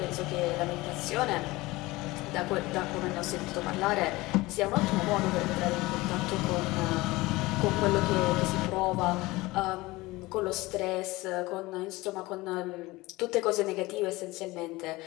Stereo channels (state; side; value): quieter; right; 20.6 dB